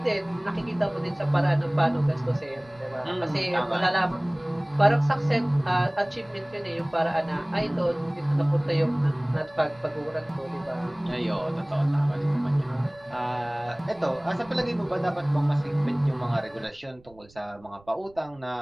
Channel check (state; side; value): noise; right; rumble, 27 dB below the sound